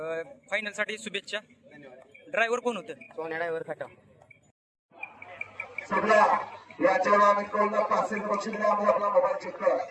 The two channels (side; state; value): both; identical; correlation 1.00